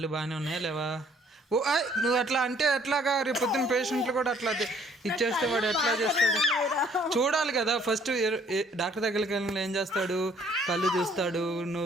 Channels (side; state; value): both; normal; correlation 0.61